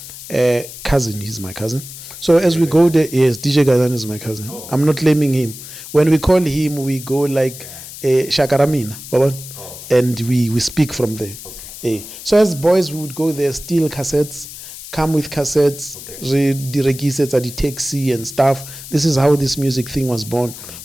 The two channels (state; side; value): noise; left; hiss, 13 dB below the sound